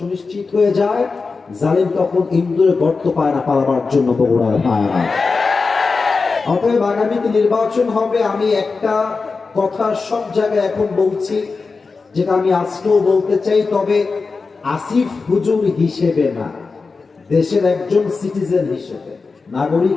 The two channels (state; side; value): quieter; right; 4.4 dB